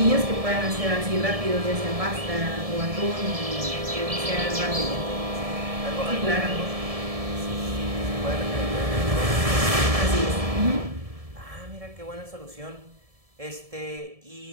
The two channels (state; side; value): late; left; 1.7 ms